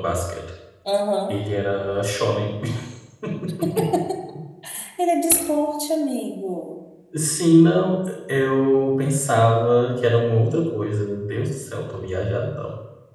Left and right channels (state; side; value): identical; both; correlation 1.00